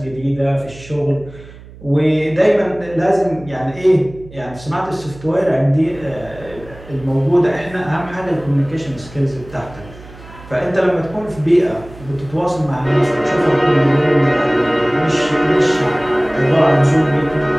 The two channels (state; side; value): noise; right; hum, 19 dB below the sound